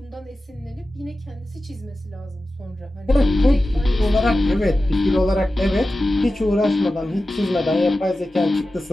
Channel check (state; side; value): normal; both; correlation 0.94